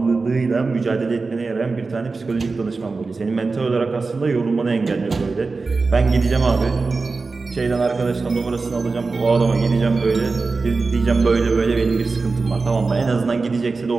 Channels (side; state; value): left; quieter; 4.0 dB